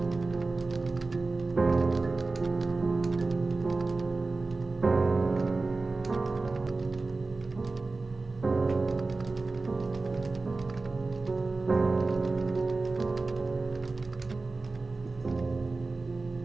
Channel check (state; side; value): quieter; left; 3.6 dB